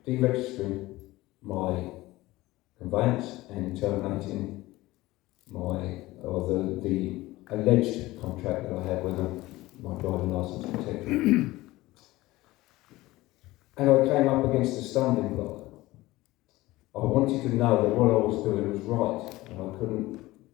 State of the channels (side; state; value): right; quieter; 18.6 dB